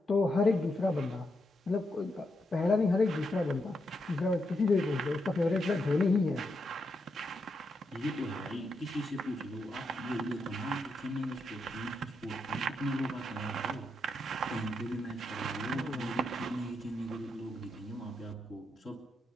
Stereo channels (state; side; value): normal; both; correlation 0.82